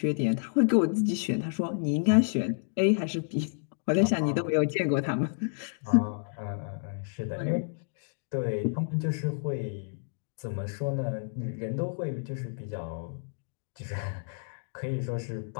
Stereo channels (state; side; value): silent; right; digital silence